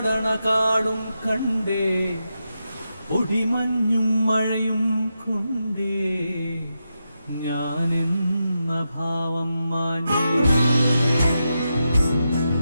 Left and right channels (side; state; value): both; inverted; correlation -0.87